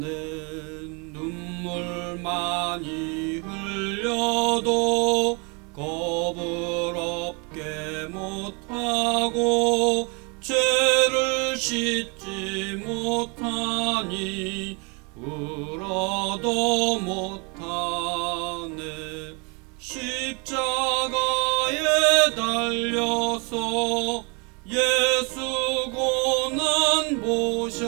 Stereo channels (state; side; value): quieter; left; 32.6 dB